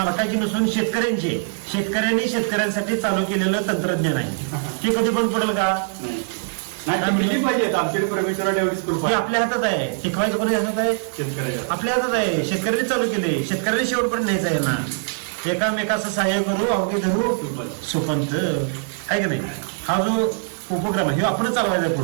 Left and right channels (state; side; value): silent; left; digital silence